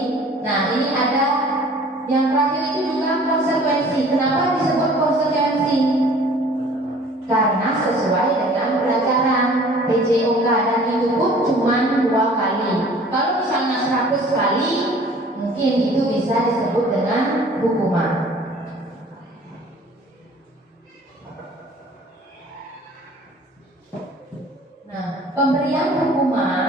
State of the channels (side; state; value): both; normal; correlation 0.50